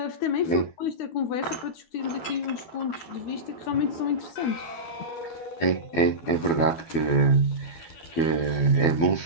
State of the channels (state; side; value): late; right; 12 ms